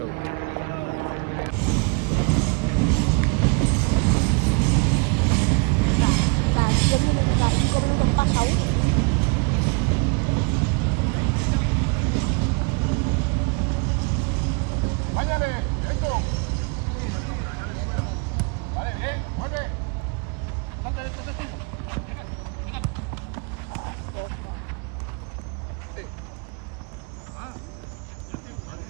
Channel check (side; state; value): left; quieter; 33.5 dB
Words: Hindi ko rin nagpasaw.